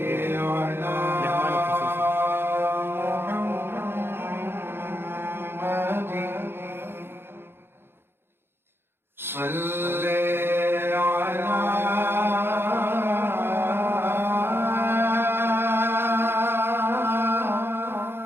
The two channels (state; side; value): late; left; 0.11 ms